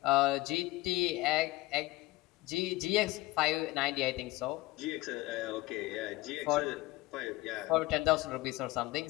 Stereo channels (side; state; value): right; quieter; 19.5 dB